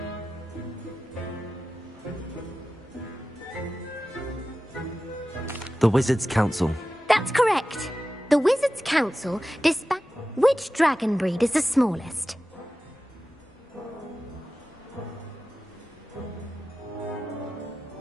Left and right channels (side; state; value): both; normal; correlation 0.94